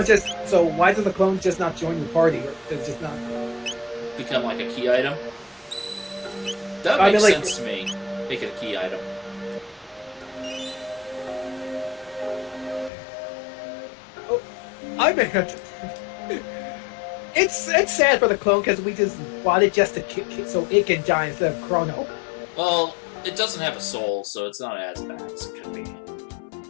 just... So why does the clone just not join your party? Or does it just not... become like a key item? That makes sense to me. Make it a key item. Oh, I mean... It's sad for the clone because we just bought it just to so it can die instead of Chrono. Well, it doesn't have a soul, so it's not as bad as it could be.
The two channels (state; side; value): drops out; right; at 12.9 s